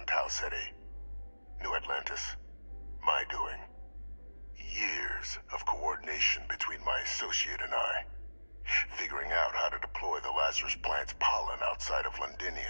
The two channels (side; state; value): both; inverted; correlation -1.00